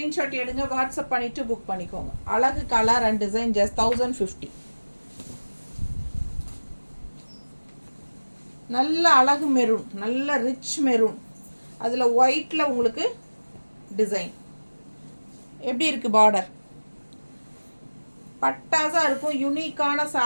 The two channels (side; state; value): both; inverted; correlation -1.00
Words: எடுங்க, வாட்ஸ்அப் பண்ணிவிட்டு புக் பண்ணிக்கோங்க. அழகு கலர் அண்ட் டிசைன். ஜஸ்ட் 1050. நல்ல அழகு மெரூன், நல்ல ரிச் மெரூன். அதில் ஒயிட்டில் உங்களுக்கு டிசைன் எப்படி இருக்குது? பார்டர் பட்டாஸாக இருக்கும். யூனிக்கான